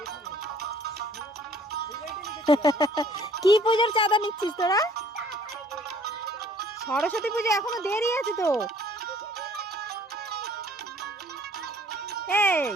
কি পুজোর চাঁদা নিচ্ছিস তোরা? সরস্বতী পুজো এখনো দেরি আছে তো। এই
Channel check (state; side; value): normal; both; correlation 0.57